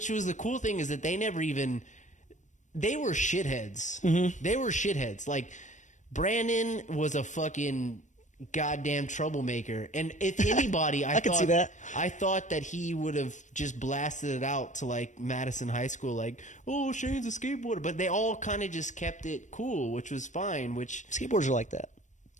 was the cool thing is that they never even, they were shitheads. They were shitheads. Like Brandon was a fucking goddamn troublemaker, and if anybody, I can see that. I thought that he would have just blasted it out to like Madison High School, like, oh, Shane's a skateboarder, but they all kind of just kept it cool, which was fine. Which Skateboarders are like that.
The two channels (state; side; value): late; right; 0.35 ms